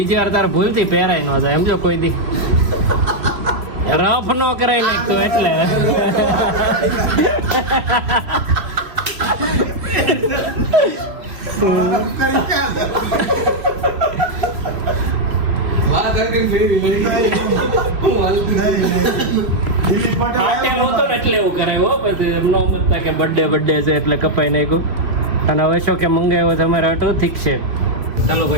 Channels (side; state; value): left; late; 3.0 ms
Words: વાર તારે ભૂલથી પહેરાય ન જાય એમ જો કોઈ દી રફ નો કરાય નાખતું એટલે. એટલે એવું કરાય હો, પછી નો મતતા કે બર્થડે છે એટલે કપાઈ નાખ્યું. અને હવે શું કે મંગાવ્યો તમારે હટો ઠીક છે. ચાલો